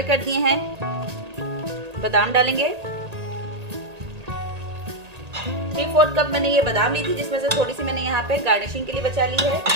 कर दिए हैं। बादाम डालेंगे। 3/4 कप मैंने ये बादाम ली थी, जिसमें से थोड़ी सी मैंने यहाँ पे गार्निशिंग के लिए बचा ली है।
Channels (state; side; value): late; left; 1.8 ms